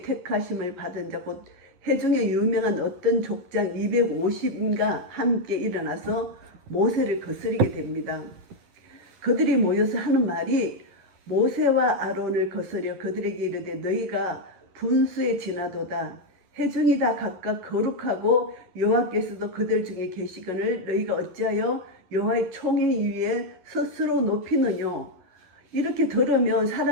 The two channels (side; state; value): left; late; 11 ms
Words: 택하심을 받은 자, 곧 회중에 유명한 어떤 족장 250인가 함께 일어나서 모세를 거스리게 됩니다. 그들이 모여서 하는 말이 모세와 아론을 거스려 그들에게 이르되 너희가 분수에 지나도다. 회중이 다 각각 거룩하고 여호와께서도 그들 중에 계시거늘 너희가 어찌하여 여호와의 총회 위에 스스로 높이느뇨. 이렇게 들으면